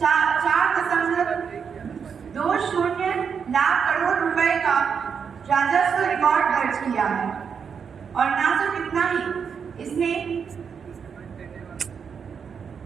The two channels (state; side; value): quieter; left; 6.6 dB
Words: 4.20 लाख करोड़ रुपए का राजस्व रिकॉर्ड दर्ज किया है। और ना सिर्फ इतना ही, इसने